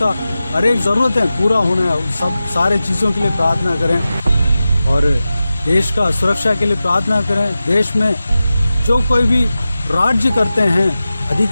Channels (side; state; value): both; inverted; correlation -0.94